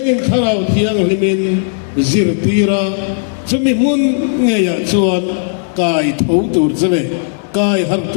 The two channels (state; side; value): silent; right; 66 dB below the other